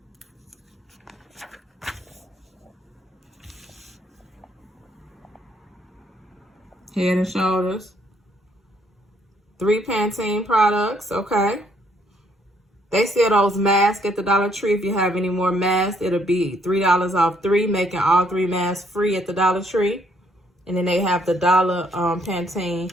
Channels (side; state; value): both; normal; correlation 0.69